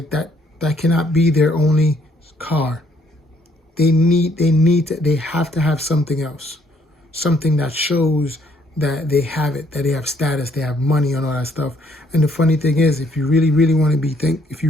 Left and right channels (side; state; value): both; normal; correlation 0.67